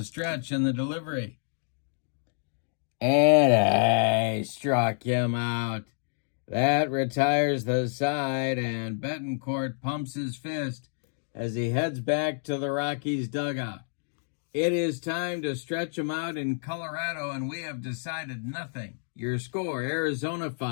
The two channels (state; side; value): silent; right; digital silence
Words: stretch and the delivery. And struck him out. That retires the side, and Betancourt pumps his fist as he heads back to the Rockies dugout. It is time to stretch them out in Colorado, and we have decided nothing. Your score, Arizona